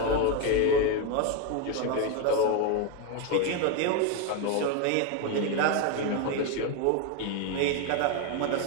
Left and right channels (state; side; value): different; both; correlation 0.02